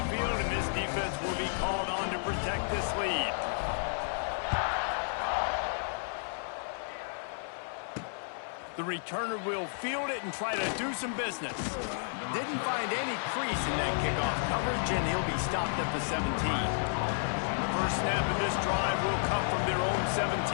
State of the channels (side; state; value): right; silent; 56 dB below the other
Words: field, and this defense will be called on to protect this lead. The returner will field it and try to do some business. Didn't find any crease in that kickoff coverage, and he'll be stopped at the 17. The first snap of this drive will come from their own